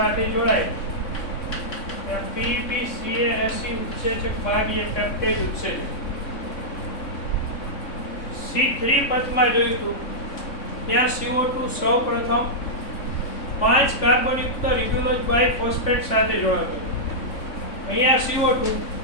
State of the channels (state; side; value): late; right; 3.6 ms